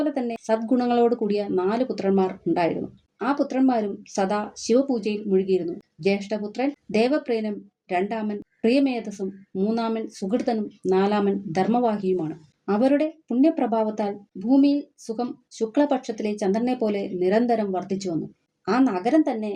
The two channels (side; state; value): both; identical; correlation 1.00